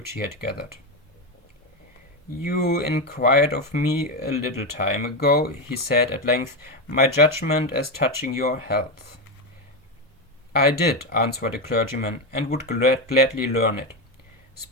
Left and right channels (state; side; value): normal; both; correlation 0.12